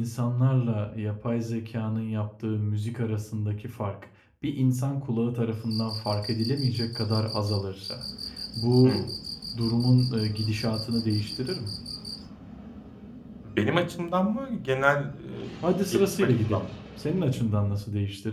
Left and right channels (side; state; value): both; identical; correlation 1.00